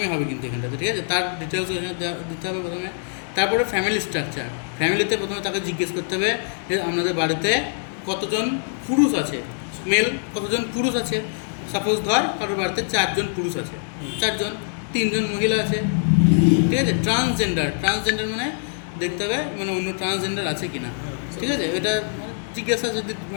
হবে কিন্তু এখানটাতে, ঠিক আছে। তার ডিটেলস এখানে দিতে হবে প্রথমে। তারপরে ফ্যামিলি স্ট্রাকচার, ফ্যামিলিতে প্রথমে তাকে জিজ্ঞেস করতে হবে যে আপনাদের বাড়িতে কতজন পুরুষ আছে, মেল কতজন পুরুষ আছে। সাপোজ ধর কারোর বাড়িতে 4 জন পুরুষ আছে, 4 জন, 3 জন মহিলা আছে, ঠিক আছে। ট্রান্সজেন্ডার মানে দেখতে হবে মানে অন্য ট্রান্সজেন্ডার আছে কিনা, ঠিক আছে। এটা জিজ্ঞাসা যদি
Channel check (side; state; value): right; silent; digital silence